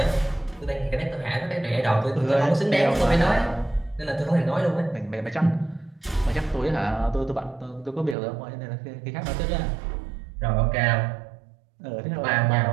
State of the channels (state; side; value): drops out; left; at 8.2 s